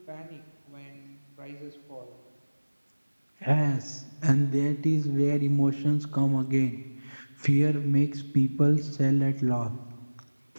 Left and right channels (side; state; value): both; inverted; correlation -1.00